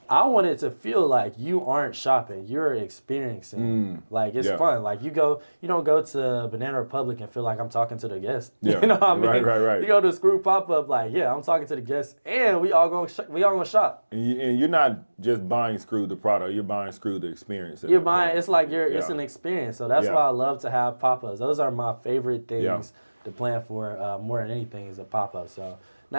I want it to feel like you aren't shopping, you're experiencing. Like it's fun. Like you don't go to Banana Republic and feel like I'm talking to the guest. Yeah. You know what I mean? Right. You go to a Screw pop-up like, I'm talking to the guests and we all gonna shop. And you're not just buying Screw the product, you're buying Screw the experience. You're buying, it's like it's an experience. So that's why I love to have pop-ups. Those are my favorite things the plan for more than anything is a pop-up. So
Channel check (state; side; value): inverted; both; correlation -1.00